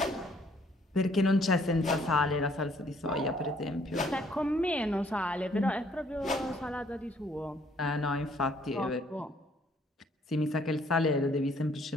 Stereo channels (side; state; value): both; normal; correlation 0.64